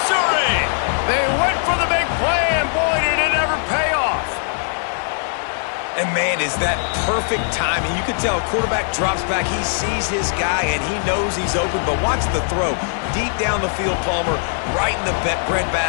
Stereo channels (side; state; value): right; silent; 66 dB below the other